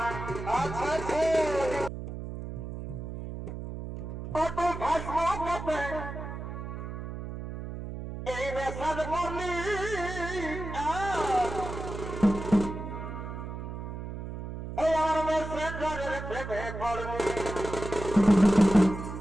আচ্ছা কত ভাসমতে এই নেশার বলি এই আমার মেসেঞ্জারের প্রেমে পড়লি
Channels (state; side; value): noise; right; hum, 8 dB below the sound